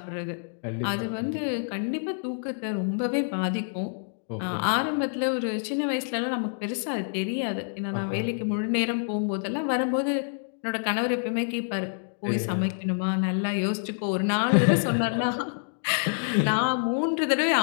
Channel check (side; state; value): right; silent; digital silence